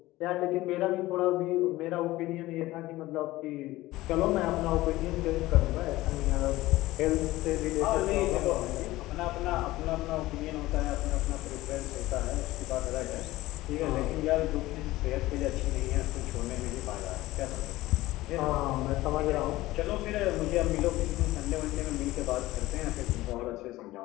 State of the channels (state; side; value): quieter; right; 17.6 dB